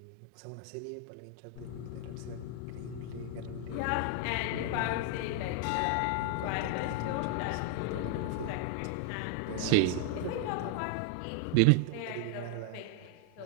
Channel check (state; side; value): different; both; correlation 0.00